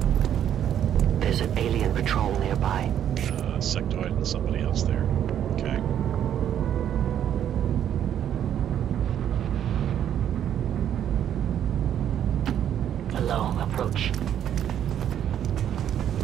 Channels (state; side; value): quieter; left; 10.0 dB